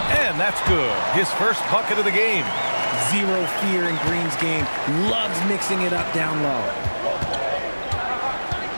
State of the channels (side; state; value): both; inverted; correlation -1.00